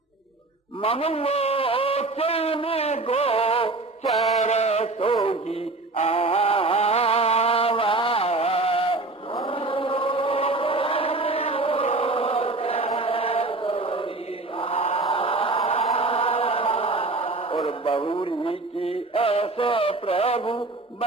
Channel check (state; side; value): quieter; left; 3.2 dB